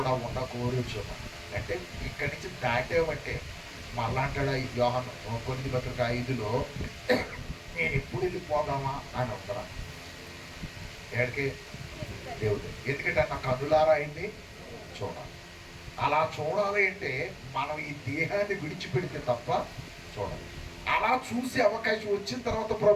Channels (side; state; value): both; identical; correlation 1.00